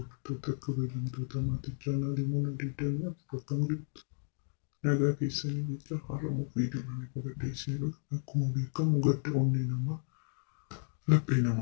kabajamtoota maatii chaanaalii Muna 24 akkam jirtu? Nagaa keessanii jecha har'amuu viidiyoon qabadhee isin dhufe akkuma beekamu gadda onnee namaa laphee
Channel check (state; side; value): silent; right; 55 dB below the other